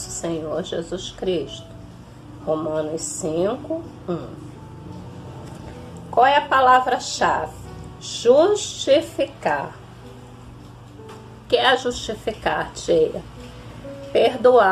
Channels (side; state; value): both; identical; correlation 1.00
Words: Senhor Jesus Cristo. Romanos 5, 1. Qual é a palavra-chave? Justificar. O que é justificar, tia?